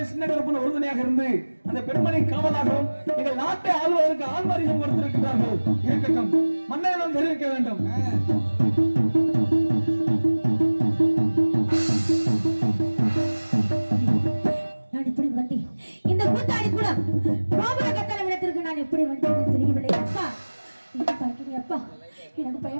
சின்ன கருப்பன் ஒரு துணையாக இருந்து அந்த பெண்மணி காவலாகவும் எங்கள் நாட்டை ஆளுவதற்கு ஆண் பரிசம் கொடுத்திருக்கிறார்கள். இருக்கட்டும், மன்னரிடம் தெரிவிக்க வேண்டும். நான் இப்படி வந்தேன். இந்த கூத்தாடி கூட கோபுர கட்டளை விடத்திற்கு நான் எப்படி வந்தேன் தெரியவில்லை. அப்பா, என்ன பார்க்கிறீங்க அப்பா? எனக்கு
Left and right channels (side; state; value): both; inverted; correlation -1.00